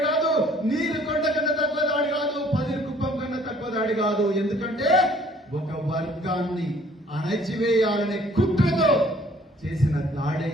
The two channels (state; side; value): normal; both; correlation 0.57